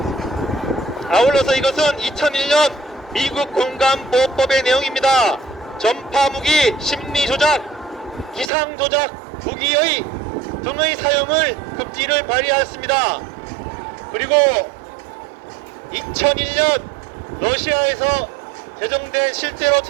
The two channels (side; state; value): left; drops out; at 8.5 s